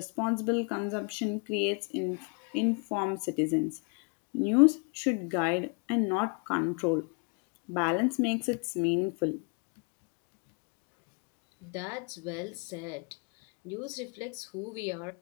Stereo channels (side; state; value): right; quieter; 39.1 dB